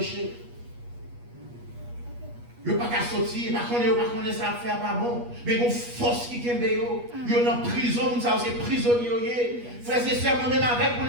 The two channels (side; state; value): left; late; 8.3 ms